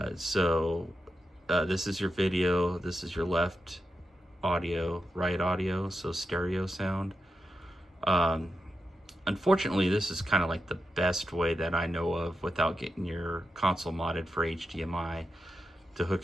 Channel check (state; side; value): normal; both; correlation 0.88